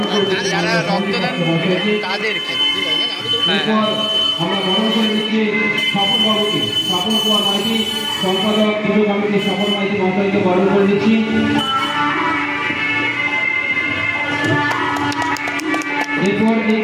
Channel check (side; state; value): both; identical; correlation 1.00